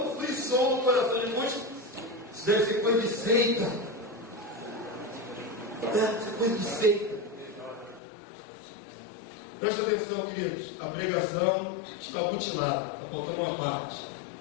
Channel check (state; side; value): drops out; right; at 8.0 s